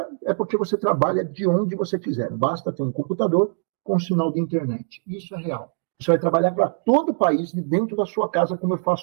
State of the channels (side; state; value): left; silent; digital silence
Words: é porque você trabalha de onde você quiser. Basta ter um computador, com sinal de internet. Isso é real. Você vai trabalhar para todo o país dentro da sua casa, como eu